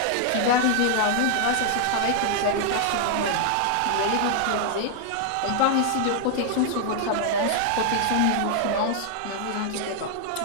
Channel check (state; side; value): different; both; correlation 0.00